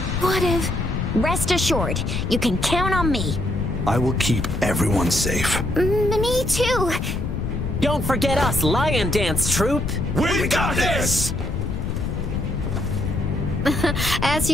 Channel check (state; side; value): noise; left; rumble, 2 dB below the sound